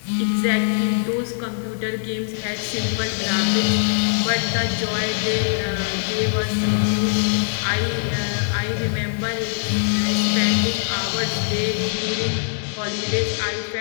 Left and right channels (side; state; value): right; silent; digital silence